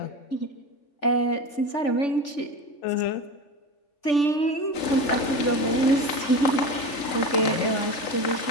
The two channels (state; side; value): late; right; 3.7 ms